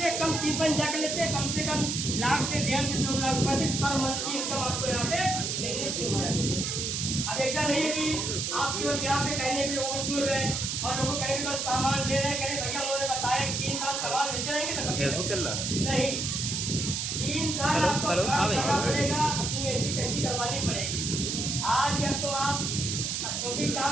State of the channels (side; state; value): right; noise; hiss, 1 dB below the sound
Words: कम 30 जा कर लेते हैं, कम से कम लाख से 1.5 से 2 लाख रुपए पर मंथ की इनकम आपको यहाँ पे मिलने शुरू हो जाती है। अब ऐसा नहीं है कि आप केवल यहाँ पे कहने के लोगों को जुड़ गए और लोगों को कहने के बस सामान दे रहे हैं, कह भैया उन्होंने बताया 3 साल सामान लेते रहेंगे ना, फेसबुक चल रहा है नहीं 3 साल आपको काम करना पड़ेगा, अपनी ऐसी कैसी करवानी पड़ेगी। आज या तो आप जो भी